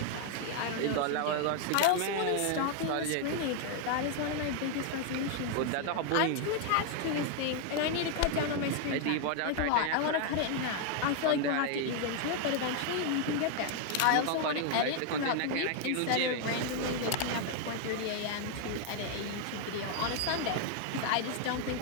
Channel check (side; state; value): both; different; correlation 0.00